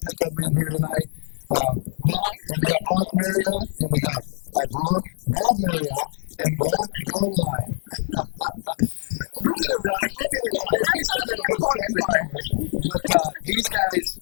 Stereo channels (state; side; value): silent; right; digital silence